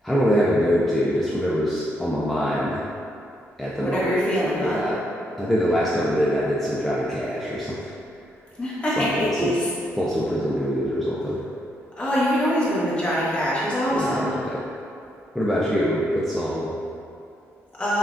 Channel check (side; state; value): both; normal; correlation 0.77